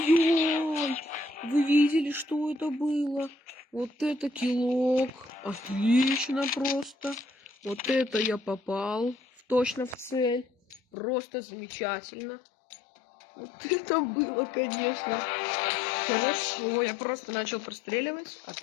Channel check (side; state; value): right; drops out; at 10.8 s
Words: Вы видели, что это было? Вот это килок. Отлично просто. Вот это я попал точно в цель. Просто замечательно. Вот это было, конечно. Хорошо. Я просто начал простреливать, а